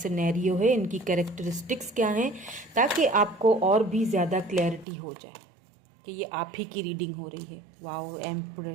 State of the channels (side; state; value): left; drops out; at 4.9 s